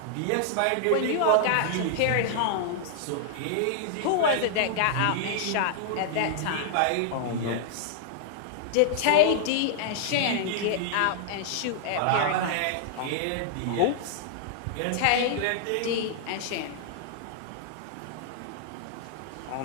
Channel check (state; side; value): different; both; correlation -0.01